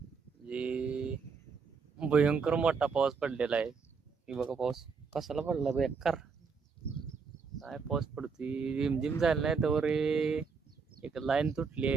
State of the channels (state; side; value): quieter; left; 5.3 dB